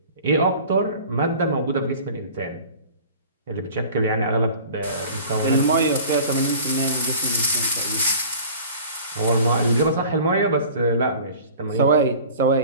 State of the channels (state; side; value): inverted; both; correlation -0.43